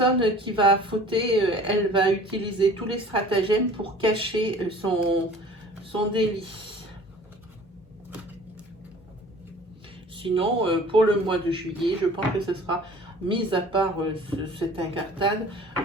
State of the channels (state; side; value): normal; both; correlation 0.47